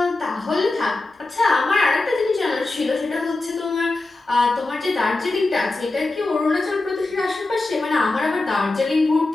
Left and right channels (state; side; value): quieter; right; 3.1 dB